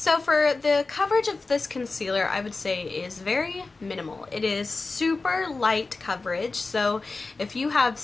for the coverage of this concealer, I would say is very minimal. It is super light coverage, so if you have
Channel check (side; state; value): right; quieter; 3.7 dB